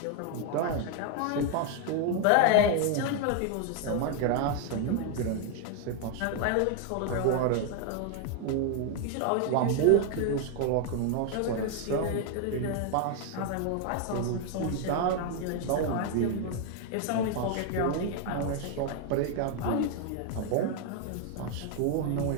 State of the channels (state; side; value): different; both; correlation 0.00